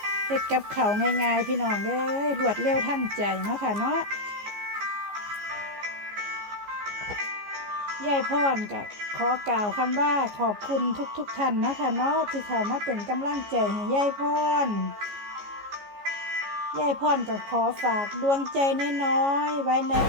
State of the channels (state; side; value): late; left; 14 ms